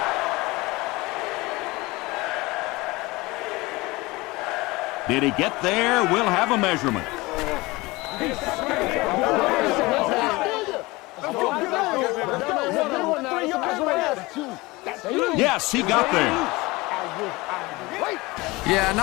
Did he get there? We'll have a measurement. Yes, he got there. Yeah,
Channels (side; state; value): right; quieter; 22.3 dB